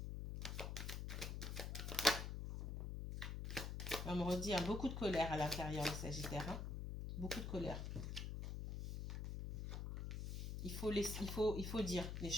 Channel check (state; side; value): noise; left; hum, 4 dB below the sound